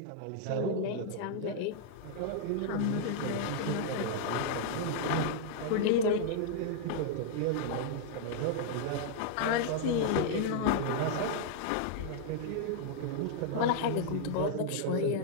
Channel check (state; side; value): different; both; correlation -0.01